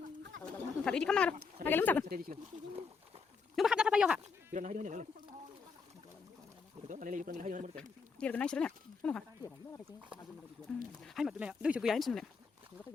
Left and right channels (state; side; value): quieter; right; 5.1 dB